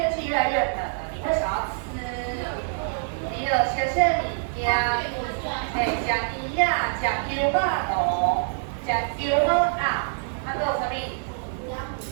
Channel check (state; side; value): silent; left; 61 dB below the other